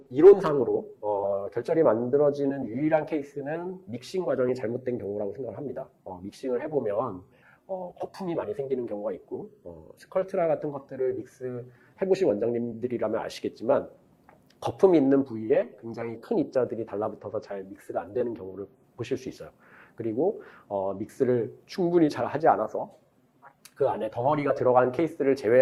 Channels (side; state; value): both; identical; correlation 1.00